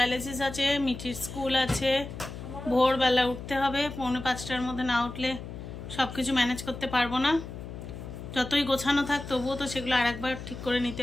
আছে, মিঠির স্কুল আছে, ভোরবেলা উঠতে হবে। 4:45টার মধ্যে না উঠলে সব কিছু ম্যানেজ করতে পারবো না। যতই গোছানো থাক তবুও তো সেগুলো আর একবার ঠিক করে নিতে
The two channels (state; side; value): noise; left; hum, 10 dB below the sound